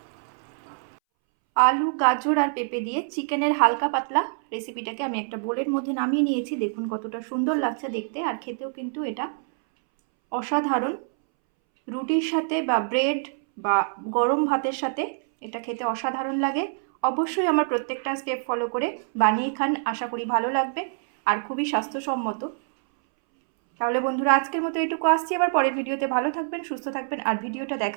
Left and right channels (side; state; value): left; silent; 61 dB below the other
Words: আলু, গাজর আর পেঁপে দিয়ে চিকেনের হালকা পাতলা রেসিপিটাকে আমি একটা বোলের মধ্যে নামিয়ে নিয়েছি। দেখুন কতটা সুন্দর লাগছে দেখতে, আর খেতেও কিন্তু এটা অসাধারণ। রুটির সাথে বা ব্রেড বা গরম ভাতের সাথে এটা খেতে অসাধারণ লাগে। অবশ্যই আমার প্রত্যেকটা স্টেপ ফলো করে বানিয়ে খান, আশা করি ভালো লাগবে আর খুবই স্বাস্থ্যসম্মত। তাহলে বন্ধুরা, আজকের মতো এটুকু আসছি, আবার পরের ভিডিওতে। ভালো থাকবেন, সুস্থ থাকবেন, আর ভিডিওটা